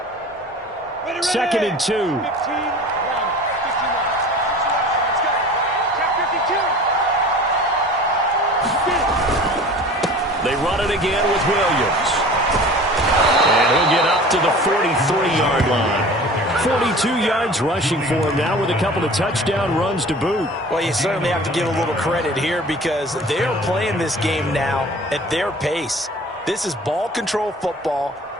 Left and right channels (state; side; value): normal; both; correlation 0.42